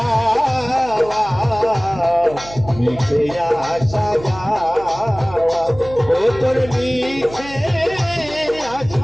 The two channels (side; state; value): right; noise; hum, 16 dB below the sound